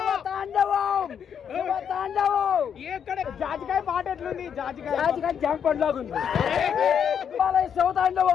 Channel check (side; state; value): right; quieter; 7.9 dB